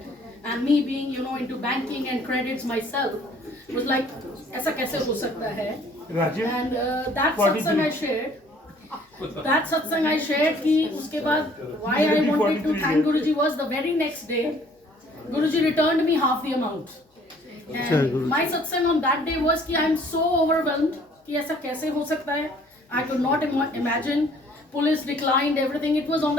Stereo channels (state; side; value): normal; both; correlation 0.57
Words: and me being into banking and credits myself was like, ऐसा कैसे हो सकता है? And that satsang I shared. That satsang I shared कि उसके बाद why I wanted to thank Guruji was the very next day, Guruji returned me half the amount. And my satsang on that day was कि I am so overwhelmed कि ऐसा कैसे हो सकता है? I could not imagine. Police declined everything. It was on